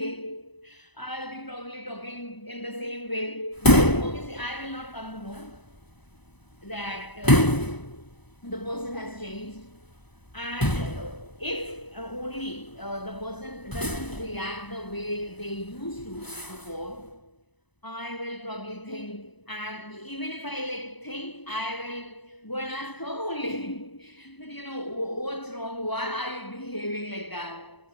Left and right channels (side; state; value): right; late; 1.0 ms